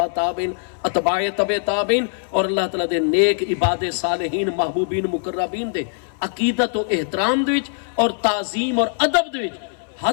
تابعین، اتباع تبع تابعین اور اللہ تعالیٰ دے نیک عباد صالحین محبوبین مقربین دے عقیدت و احترام دے وچ اور تعظیم اور ادب دے وچ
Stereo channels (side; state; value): right; silent; 61 dB below the other